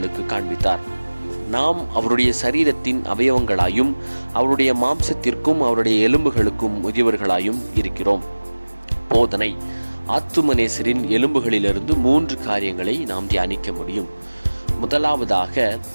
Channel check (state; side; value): inverted; both; correlation -1.00